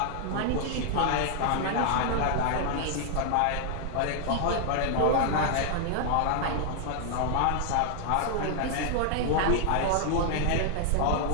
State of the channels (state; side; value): different; both; correlation -0.01